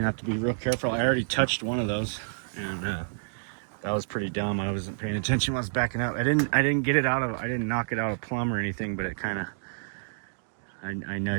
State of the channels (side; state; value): left; silent; digital silence